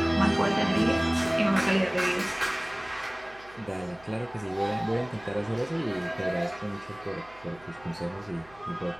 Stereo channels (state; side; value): noise; right; hum, 25 dB below the sound